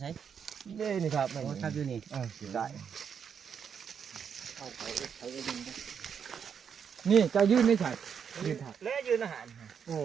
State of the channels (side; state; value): left; quieter; 7.2 dB